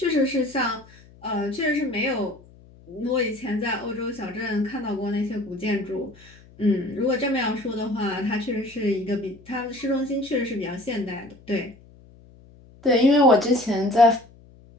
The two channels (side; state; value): left; noise; hum, 24 dB below the sound